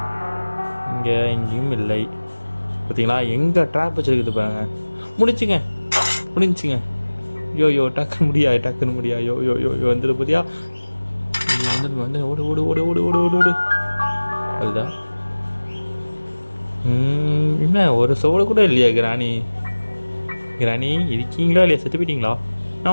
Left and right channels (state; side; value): inverted; both; correlation -1.00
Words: எங்கேயும் இல்லை. பார்த்தீங்களா, எங்கே ட்ராப் வச்சுருக்குது பாருங்க. முடிஞ்சுங்க. யோ டக்குன்னு முடியா. யோ வந்துடு புதியா. வந்து ஓடு. அதுதான். என்ன ஒரு சோடு கூட இல்லையா கிராணி இருக்கீங்களா இல்லையா? செத்து போயிட்டீங்களா?